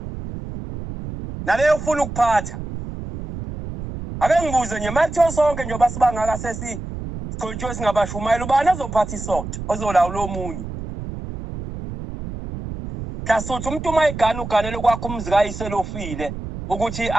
naleyo ufuna ukuphatha ake ngibuze nje makuthiwa sonke njengoba sibangaka gcotshwe singabashumayela ubani azophatha isonto ozolawula omunye Hlasuthi umuntu uma egana uganele kwakho umzi kayiselofile ukuthi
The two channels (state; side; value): noise; right; rumble, 8 dB below the sound